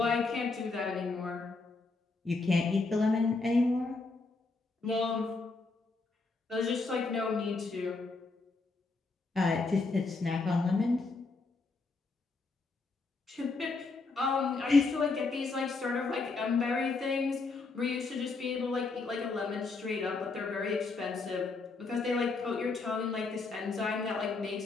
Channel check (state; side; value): quieter; right; 3.8 dB